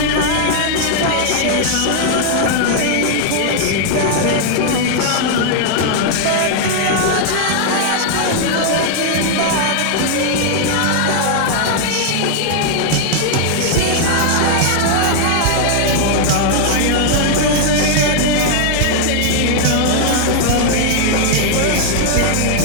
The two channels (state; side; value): different; both; correlation 0.00